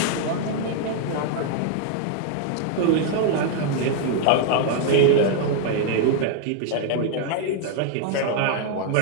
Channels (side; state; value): both; different; correlation 0.00